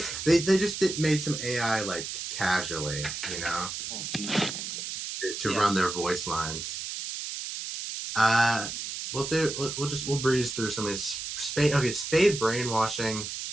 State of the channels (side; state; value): right; noise; hiss, 6 dB below the sound